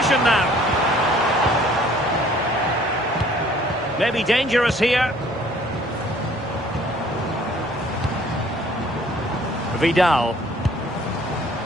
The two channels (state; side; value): normal; both; correlation 0.56